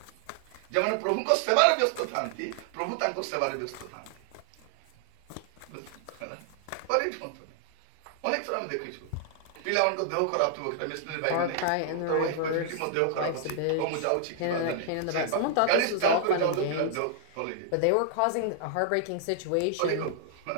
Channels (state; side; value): different; both; correlation -0.01